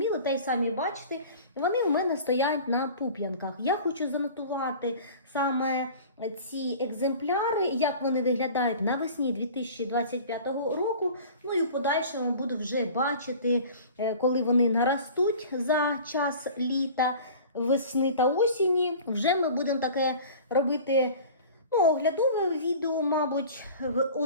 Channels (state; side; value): inverted; both; correlation -0.42